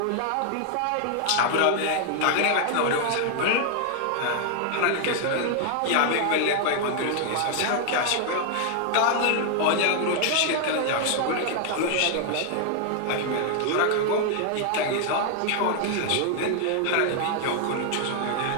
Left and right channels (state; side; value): different; both; correlation 0.00